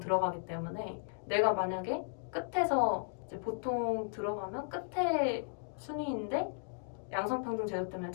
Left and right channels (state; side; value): silent; right; 54 dB below the other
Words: 때문에 내가 만약에 끝에서 이제 보통 들어가면 끝에 순위인데 양성평등 제도 때문에